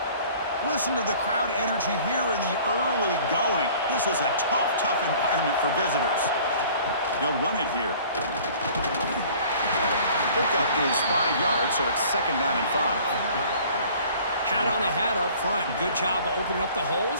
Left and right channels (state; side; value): inverted; both; correlation -0.50